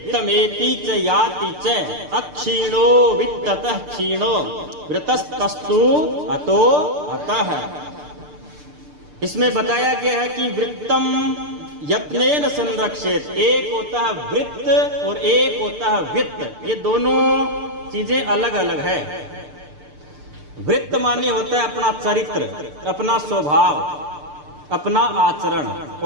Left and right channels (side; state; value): left; late; 6.7 ms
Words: च याति च अक्षीणो वित्ततः क्षीणो वृतस्तस्तु अतो अतः। इसमें बताया गया है कि वृत्तम यत्नेन संरक्षेत, एक होता है वृत्त और एक होता है वित्त। ये दोनों चीजें अलग अलग है। वृत्त माने होता है अपना चरित्र, अपना स्वभाव, अपना आचरण,